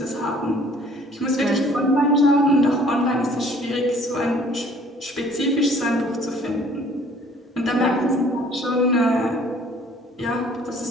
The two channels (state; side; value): normal; both; correlation 0.55